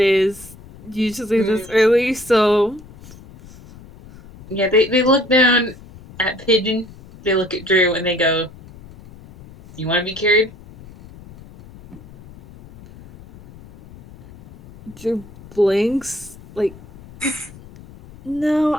usually this early, so... Yeah, they look down at Pigeon, they look at Drew, and they go, you want to be carried? Drew blinks, like,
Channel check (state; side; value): noise; left; rumble, 20 dB below the sound